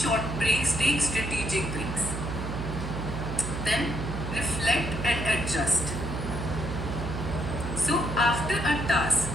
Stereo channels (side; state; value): right; noise; hum, 5 dB below the sound